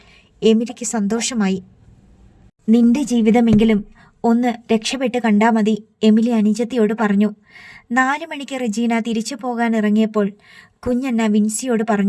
എമിലിക്ക് സന്തോഷമായി. നിന്റെ ജീവിതമെങ്കിലും ഒന്ന് രക്ഷപ്പെട്ട് കണ്ടാൽ മതി, എമിലി അനുജത്തിയോട് പറഞ്ഞു. 4 മണിക്ക് റെജീന തിരിച്ചു പോകാൻ ഇറങ്ങിയപ്പോൾ കുഞ്ഞണ്ണ വിൻസിയോട്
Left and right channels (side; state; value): both; identical; correlation 1.00